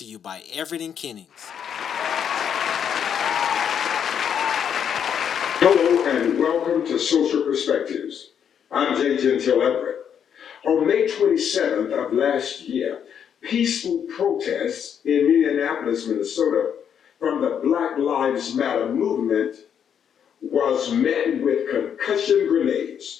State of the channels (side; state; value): right; quieter; 8.3 dB